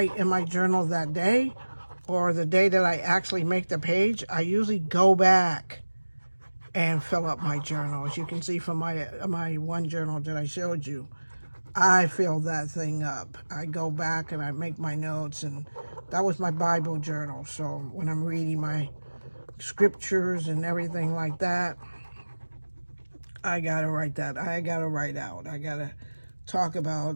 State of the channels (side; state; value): both; inverted; correlation -1.00